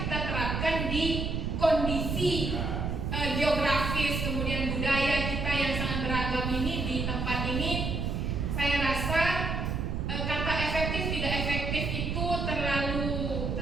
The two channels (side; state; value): right; noise; rumble, 1 dB below the sound